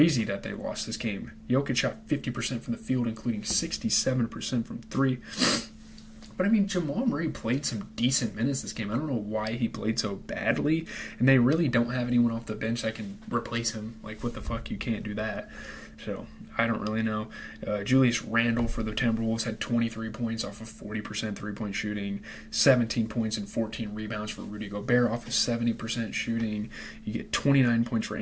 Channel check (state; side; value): identical; both; correlation 1.00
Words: that they lost this game. Jokic shot 50% from the field, including 67% from 3. But, I mean, Jamal Murray played some decent minutes this game. I don't know why he played so badly. And they really don't have anyone off the bench that can replace him. Like, what the fuck? You can't do that. So, I don't really know. Julius Randle for the Timberwolves had 23 points off of 40% three-point shooting. 17 points and 14 rebounds for Rudy Gobert off of 70% shooting. You get 29 points for